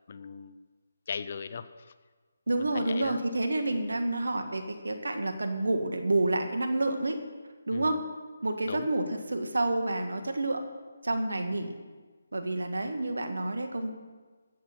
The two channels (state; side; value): inverted; both; correlation -0.92